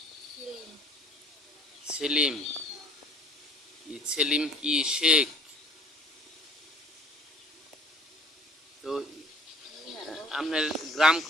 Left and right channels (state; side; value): normal; both; correlation 0.54